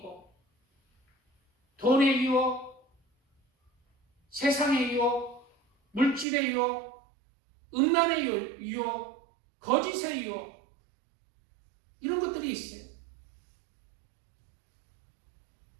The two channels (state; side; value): drops out; left; at 6.2 s